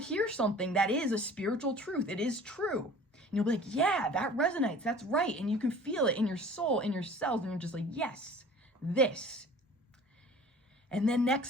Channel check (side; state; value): both; normal; correlation 0.45